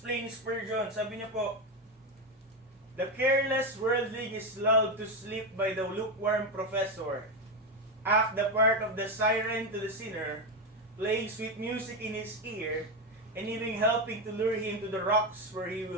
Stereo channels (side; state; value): both; normal; correlation 0.11